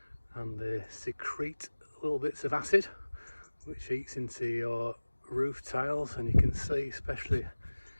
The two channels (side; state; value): both; inverted; correlation -1.00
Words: and they secrete little bits of acid which eats into your roof tiles, and you can see, especially,